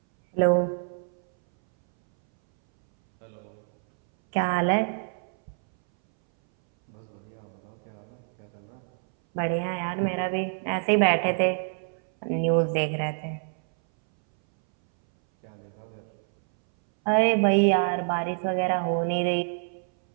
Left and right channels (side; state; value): left; silent; 60 dB below the other